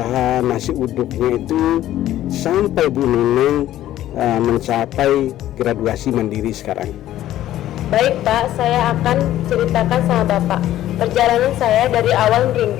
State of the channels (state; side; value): quieter; right; 13.3 dB